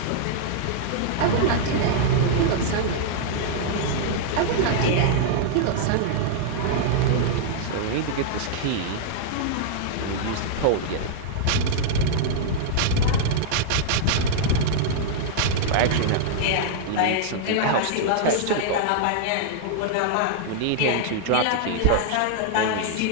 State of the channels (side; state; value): both; different; correlation -0.01